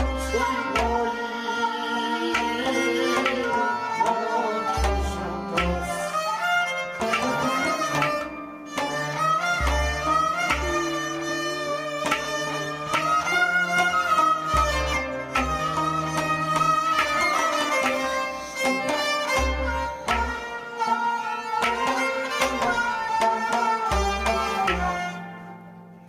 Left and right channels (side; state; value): both; identical; correlation 1.00